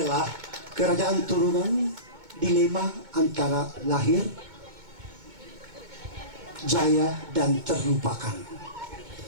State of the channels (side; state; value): left; late; 2.2 ms